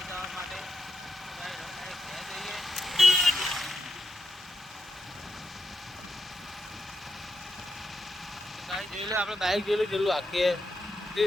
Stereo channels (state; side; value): normal; both; correlation 0.84